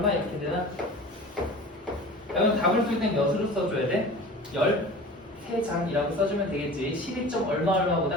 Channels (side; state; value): both; normal; correlation 0.39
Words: 이렇게 되나? 그럼 답을 쓸 땐 몇으로 써줘야 돼? 13장이라고 써주면 되겠지. 12점